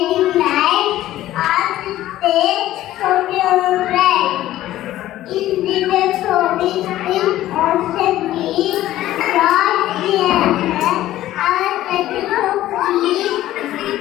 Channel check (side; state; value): right; quieter; 14.3 dB